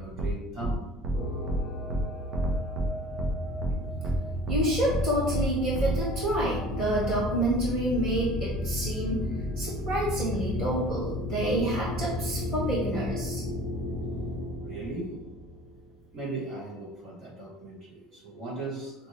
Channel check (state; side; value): normal; both; correlation 0.45